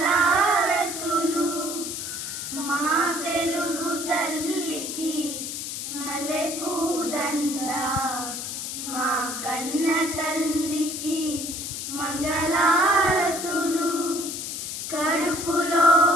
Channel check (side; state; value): left; noise; hiss, 5 dB below the sound